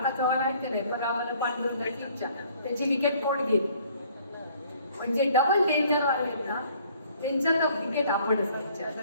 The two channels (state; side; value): inverted; both; correlation -0.58